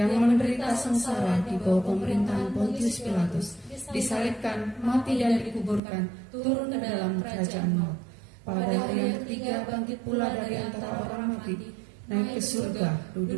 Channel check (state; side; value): drops out; left; at 5.8 s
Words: menderita sengsara di bawah pemerintahan Pontius Pilatus, disalibkan, mati dan dikuburkan, turun ke dalam kerajaan maut. Pada hari yang ketiga bangkit pula dari antara orang mati, naik ke surga,